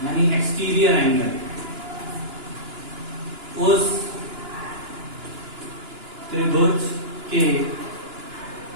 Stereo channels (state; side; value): late; left; 2.9 ms